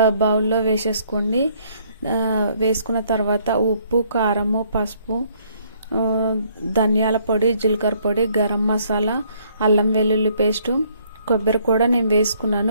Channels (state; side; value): inverted; both; correlation -0.65